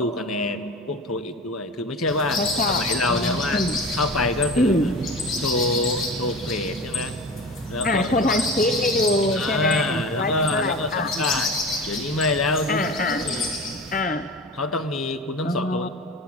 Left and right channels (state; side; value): normal; both; correlation 0.33